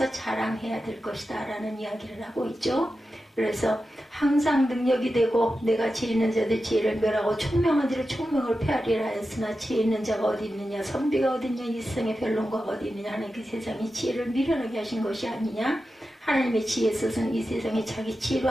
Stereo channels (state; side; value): normal; both; correlation 0.91